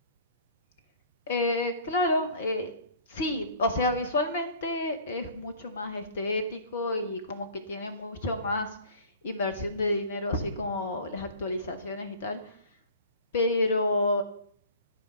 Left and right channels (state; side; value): inverted; both; correlation -0.46